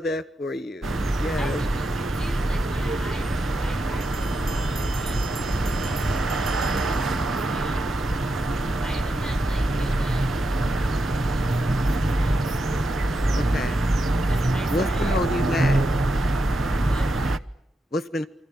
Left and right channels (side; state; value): both; normal; correlation 0.85